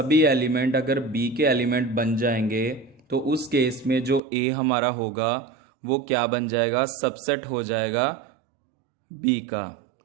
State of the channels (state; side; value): drops out; left; at 4.2 s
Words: एलिमेंट अगर B के एलिमेंट बन जाएंगे तो उस केस में जो A हमारा होगा वो क्या बन जाएगा? सबसेट हो जाएगा B का।